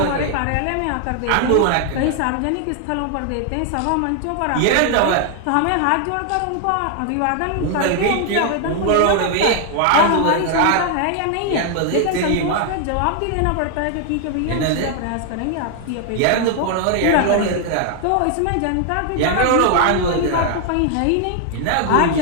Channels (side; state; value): both; different; correlation 0.00